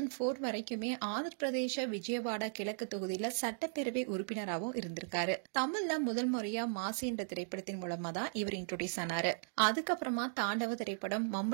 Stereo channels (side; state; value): left; silent; digital silence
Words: வரைக்குமே ஆந்திர பிரதேச விஜயவாடா கிழக்கு தொகுதியில சட்டப்பேரவை உறுப்பினராகவும் இருந்திருக்காரு. தமிழ்ல முதல் முறையா மாசி என்ற திரைப்படத்தின் மூலமா தான் இவர் இன்ட்ரோடியூஸ் ஆனாரு. அதுக்கப்புறமா தாண்டவ திரைப்படம்,